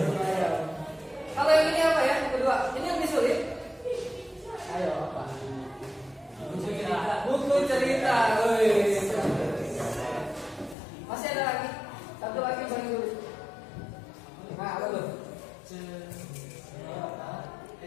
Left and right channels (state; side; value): drops out; right; at 10.8 s